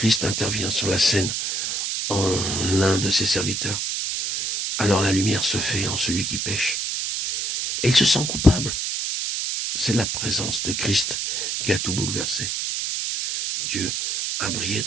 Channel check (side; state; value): right; noise; hiss, 1 dB below the sound